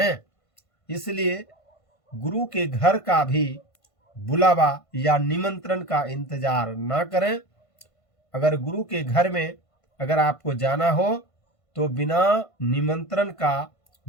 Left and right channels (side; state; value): right; late; 1.5 ms